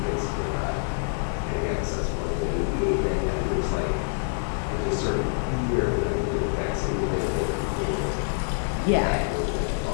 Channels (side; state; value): right; silent; digital silence